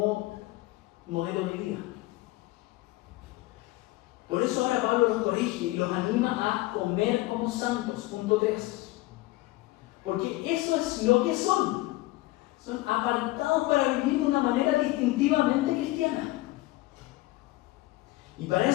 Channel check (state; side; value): quieter; right; 18.9 dB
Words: modelo de vida. Por eso ahora Pablo los corrige y los anima a comer como santos, punto 3. Porque eso es lo que son. Son apartados para vivir de una manera distintivamente cristiana. Y para